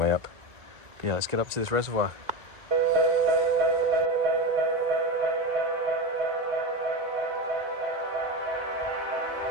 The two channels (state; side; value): late; left; 1.9 ms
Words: up. But yeah, let's get up to this reservoir.